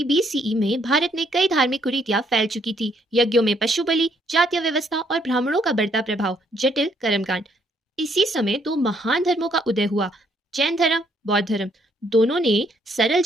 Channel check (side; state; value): both; normal; correlation 0.69